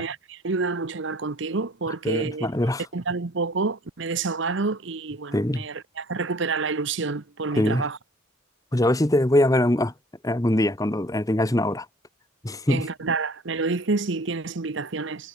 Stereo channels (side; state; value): both; normal; correlation 0.53